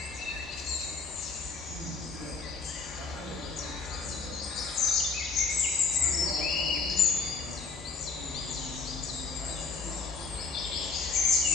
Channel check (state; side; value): quieter; right; 4.6 dB